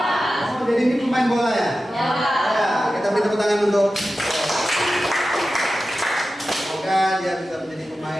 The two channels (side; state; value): both; normal; correlation 0.93